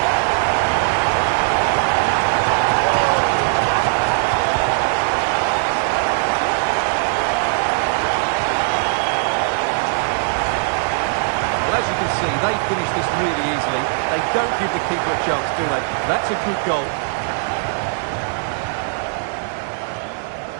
Well, as you can see, they finish this really easily. They don't give the keeper a chance, do they? That's a good goal.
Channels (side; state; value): left; silent; digital silence